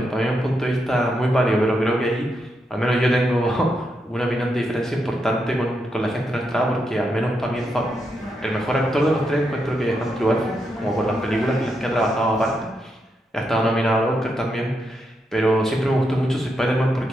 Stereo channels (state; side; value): normal; both; correlation 0.83